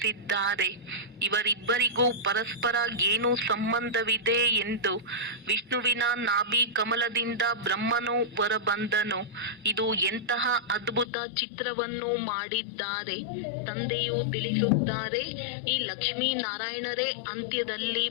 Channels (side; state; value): right; drops out; at 11.1 s